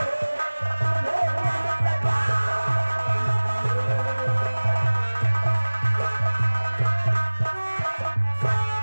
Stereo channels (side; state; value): both; inverted; correlation -1.00